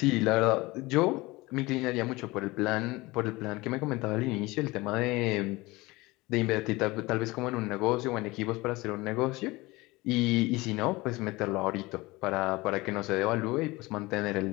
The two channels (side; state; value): right; quieter; 21.6 dB